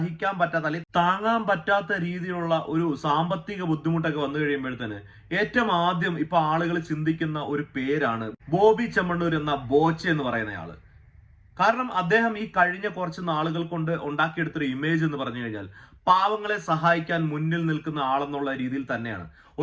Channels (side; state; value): both; identical; correlation 1.00